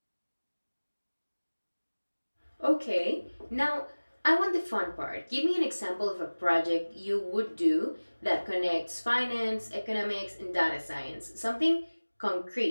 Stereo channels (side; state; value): both; inverted; correlation -1.00